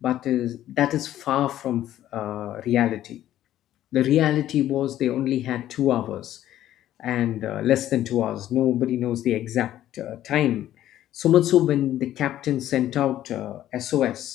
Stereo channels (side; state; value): right; quieter; 12.7 dB